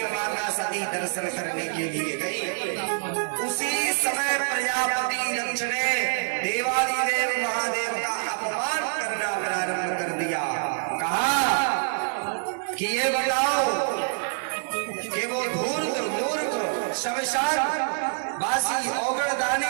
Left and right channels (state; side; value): silent; left; 61 dB below the other